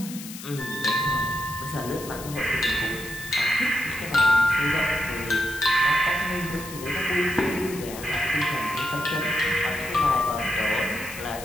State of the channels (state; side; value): noise; left; hiss, 12 dB below the sound